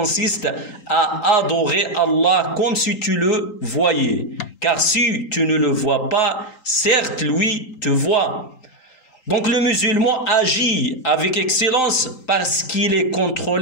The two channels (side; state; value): right; late; 3.8 ms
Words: à adorer Allah comme si tu le voyais. Car si tu ne le vois pas, certes lui te voit. Donc le musulman agit avec excellence parce qu'il est